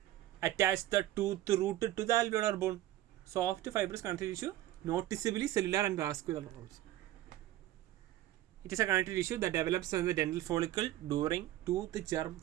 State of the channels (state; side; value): quieter; left; 14.6 dB